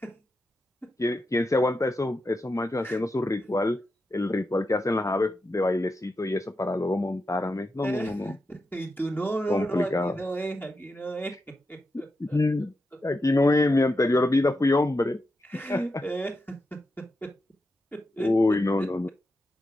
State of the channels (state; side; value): normal; both; correlation 0.87